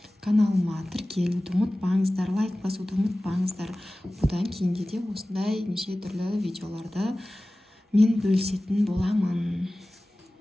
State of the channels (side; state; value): both; normal; correlation 0.97